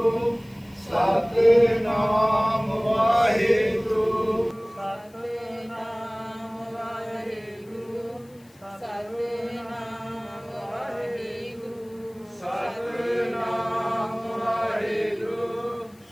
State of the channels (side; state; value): left; noise; hiss, 29 dB below the sound